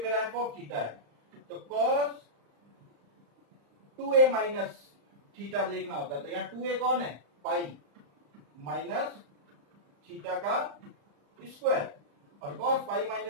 मेरा एफ ऑफ थीटा है, तो cos 2a माइनस थीटा देखना होता है, तो यहाँ 2a कौन है, पाई माइनस थीटा का स्क्वायर, और cos पाई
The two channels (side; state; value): left; late; 35 ms